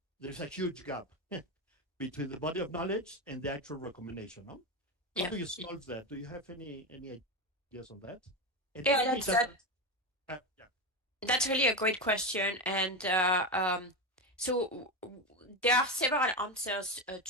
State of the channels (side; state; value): both; normal; correlation 0.15